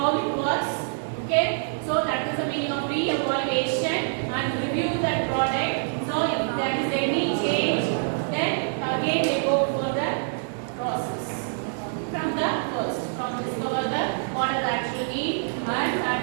it works. Okay, so that is the meaning of re-evaluation and review that product. So if there is any change, then again they go for the process from the first, from discover the what are the actual need and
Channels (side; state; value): left; silent; digital silence